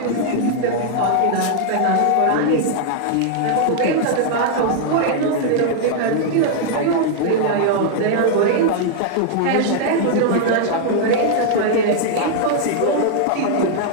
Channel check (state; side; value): different; both; correlation 0.00